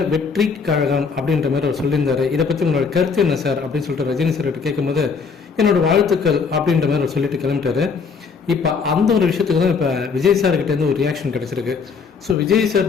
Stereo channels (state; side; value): quieter; right; 5.4 dB